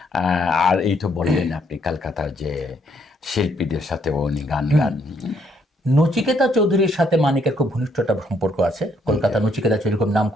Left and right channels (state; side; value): normal; both; correlation 0.70